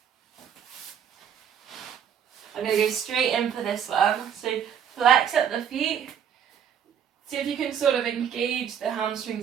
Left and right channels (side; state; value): left; quieter; 8.4 dB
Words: I'm going to go straight in for this one. So flex up the feet, See if you can sort of engage the